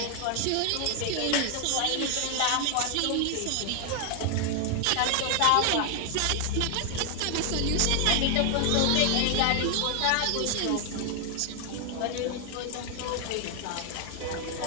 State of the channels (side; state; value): both; different; correlation 0.00